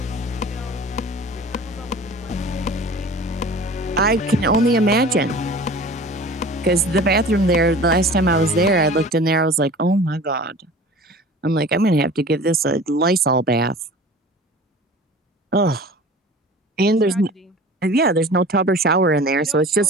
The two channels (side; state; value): both; normal; correlation 0.41